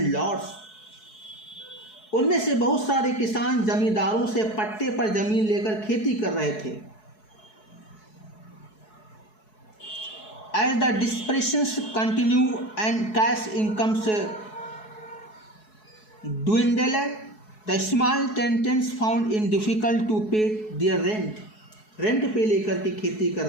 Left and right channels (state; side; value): late; right; 4.7 ms